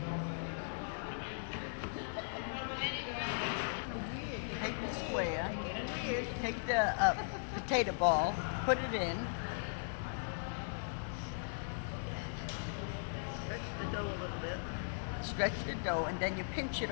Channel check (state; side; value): silent; right; digital silence